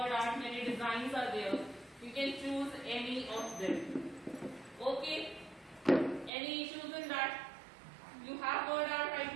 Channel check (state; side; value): drops out; left; at 6.3 s